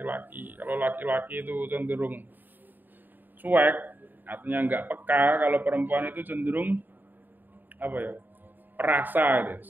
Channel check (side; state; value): left; late; 0.090 ms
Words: Kalau laki-laki itu cenderung cuek, artinya enggak peka. Kalau perempuan itu cenderung perasa gitu.